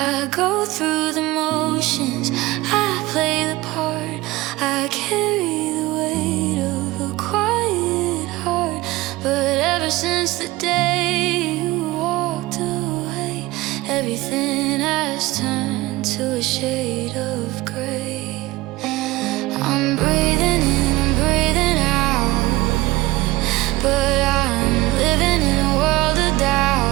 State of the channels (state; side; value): quieter; left; 19.3 dB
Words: go through the motions, I play the part, I carry the weight of a quiet heart. But ever since the day you walked away, everything has turned to a shade of gray. I'm breathing in, I'm breathing out, but I'm living in a world of